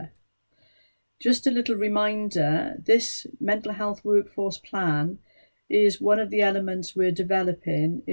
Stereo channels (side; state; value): both; inverted; correlation -1.00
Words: Just a little reminder, this mental health workforce plan is one of the elements we're developing